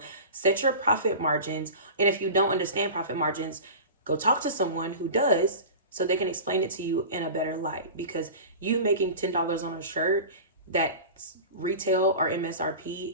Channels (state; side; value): inverted; both; correlation -0.33